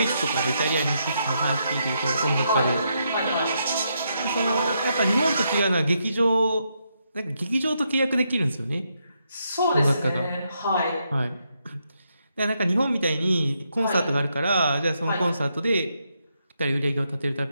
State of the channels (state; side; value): inverted; both; correlation -0.79